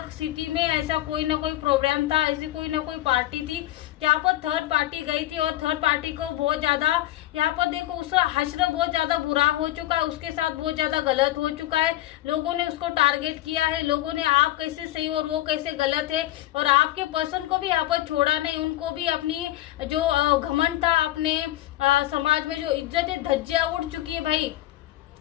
सिटी में ऐसा कोई ना कोई प्रोग्राम था, ऐसी कोई ना कोई पार्टी थी जहाँ पर थर्ड पार्टी गई थी और थर्ड पार्टी को बहुत ज्यादा यहाँ पर देखो उसका हश्र बहुत ज्यादा बुरा हो चुका है, उसके साथ बहुत ज्यादा गलत हो चुका है। लोगों ने उसको टारगेट किया है, लोगों ने आप कैसे सही और वो कैसे गलत है, और आपके पर्सन को भी यहाँ पर छोड़ा नहीं। उनको भी अपनी जो घमंड था, अपने समाज में जो इज्जत है, धज्जियां उड़ चुकी है भाई,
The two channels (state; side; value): quieter; right; 15.0 dB